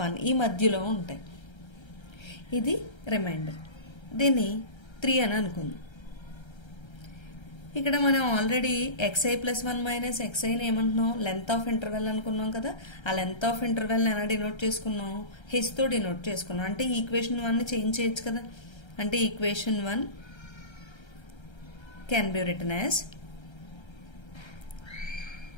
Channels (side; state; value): right; late; 1.3 ms